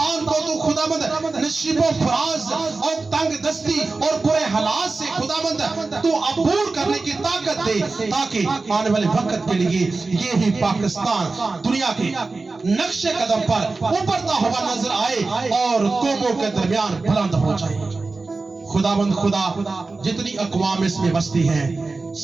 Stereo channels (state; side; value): quieter; left; 3.7 dB